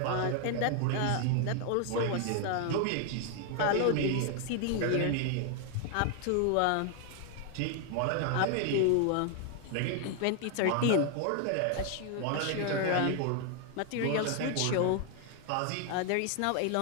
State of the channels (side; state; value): both; different; correlation 0.00